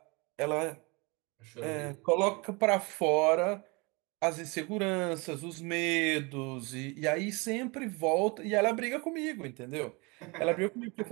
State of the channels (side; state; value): left; quieter; 28.1 dB